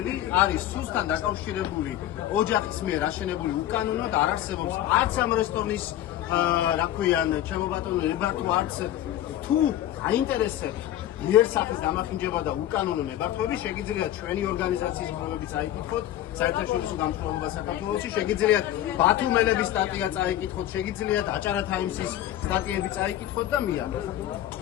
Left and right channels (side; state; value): right; quieter; 12.8 dB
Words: არის სუსთან დაკავშირებული ოჯახის მიერ აშენებული უკანონოდ არ არსებობს არც ამ რესტორნის რა ქვიან ჩემო ბატონო ნებართვა არც თუ აინტერესებს იერსახის დამახინჯება და უკანონო ნებართვები შეგიძლიათ ჩვენი ორგანიზაციის პრობლემები წაიკითხოთ საერთაშორისო გამსხვილება საქართველოში შეგიძლიათ ბათუმელების სტატია წაიკითხოთ შეგიძლიათ აჭარა თაიმსის სტატიები წაიკითხოთ და მიიღოთ